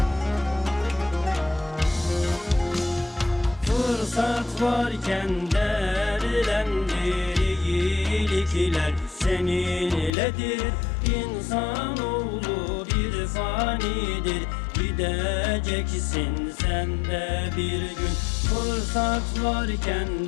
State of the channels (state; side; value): drops out; right; at 10.1 s